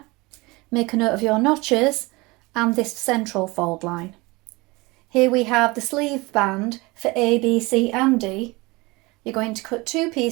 Make a note of your notches and this central fold line. Here we have the sleeve band for A, B, C and D. You're going to cut 2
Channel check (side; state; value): left; quieter; 23.7 dB